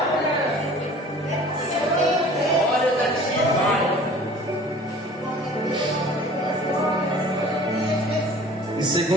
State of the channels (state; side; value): normal; both; correlation 0.47